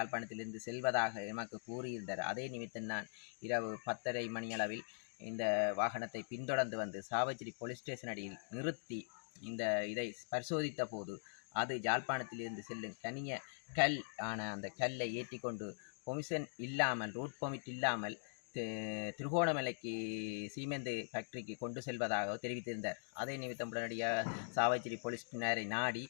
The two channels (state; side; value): silent; right; digital silence